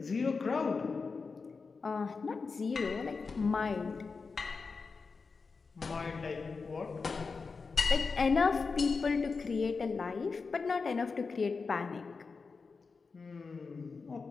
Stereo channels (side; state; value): right; quieter; 4.7 dB